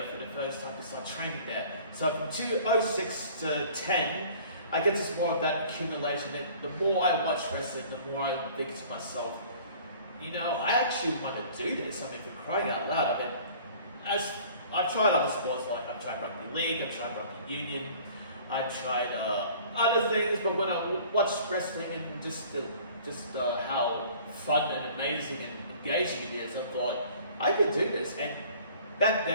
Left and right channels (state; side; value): inverted; both; correlation -0.49